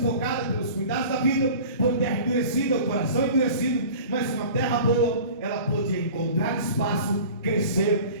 pelos cuidados da vida, por terra endurecida, o coração endurecido. Mas uma terra boa, ela podia encontrar espaço, crescer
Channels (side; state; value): both; inverted; correlation -0.41